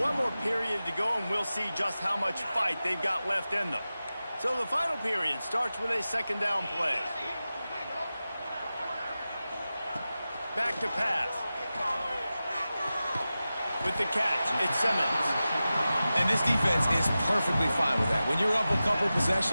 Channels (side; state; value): both; inverted; correlation -0.94